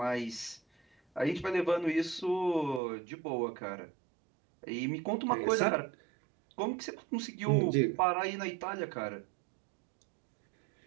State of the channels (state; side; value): drops out; left; at 2.8 s